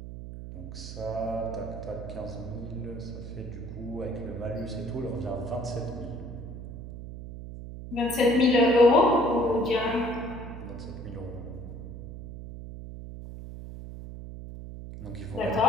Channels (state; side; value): noise; right; hum, 10 dB below the sound